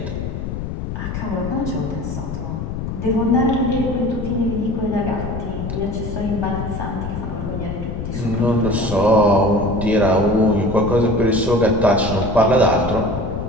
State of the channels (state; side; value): noise; left; rumble, 5 dB below the sound